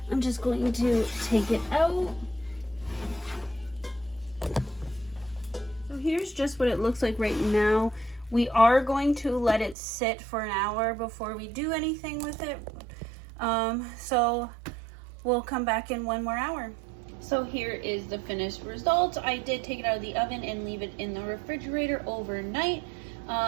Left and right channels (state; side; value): drops out; left; at 9.8 s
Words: I'm just going to take it out. So here's just what it looks like right now. We are going to let it sit for an hour before we do anything with it. So we'll come back in 1 more hour. So here is the finished result. I did take it out of the oven and leave it in the refrigerator overnight.